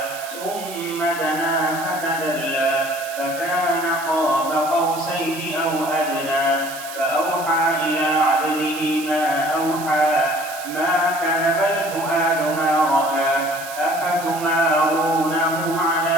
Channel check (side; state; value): right; noise; hiss, 12 dB below the sound